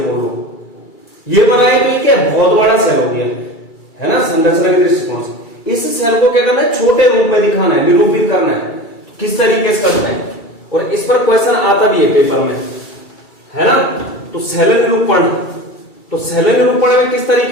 बोल रहे, ये बनाए तो ये क्या बहुत बड़ा सेल हो गया है ना, संरचना के दृष्टिकोण से। इस सेल को क्या करना है, छोटे रूप में दिखाना है, निरूपित करना है, किस तरीके से करना है, और इस पर क्वेश्चन आता भी है पेपर में, है ना। तो सेल निरूपण, तो सेल निरूपण में किस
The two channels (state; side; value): late; right; 2.3 ms